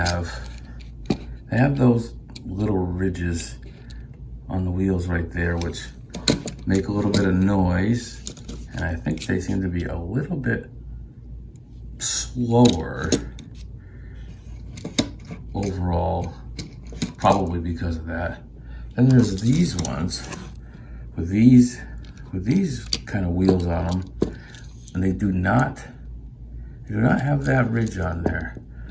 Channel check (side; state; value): both; identical; correlation 1.00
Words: those little ridges on the wheels right there, which make a little bit of noise, and I think they seem to be a little bit slower overall, probably because of that. Then there's these ones with these kind of wheels on them, and they do not have that ridge on there.